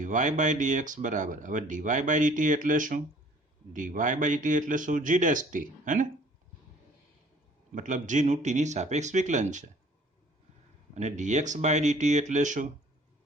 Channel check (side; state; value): both; normal; correlation 0.54